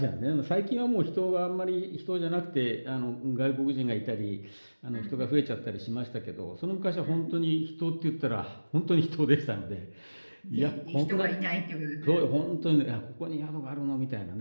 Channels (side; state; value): both; inverted; correlation -1.00